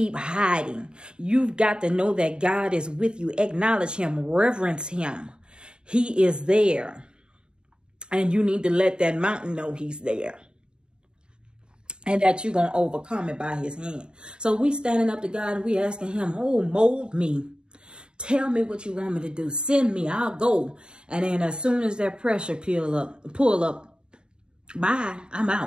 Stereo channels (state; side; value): late; left; 0.050 ms